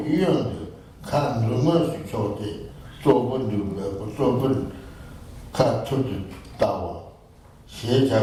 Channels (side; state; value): both; identical; correlation 1.00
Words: young, can rumors Chote, Zobun, cut to the tower. She had